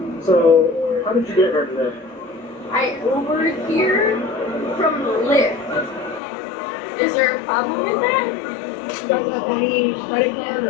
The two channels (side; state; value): right; drops out; at 6.2 s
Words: So, how did you get here today? I Ubered here from Lyft. Is there a problem with that? You guys have any credit card